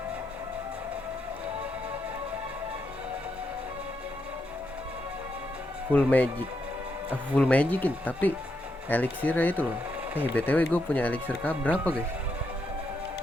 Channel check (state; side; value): normal; both; correlation 0.81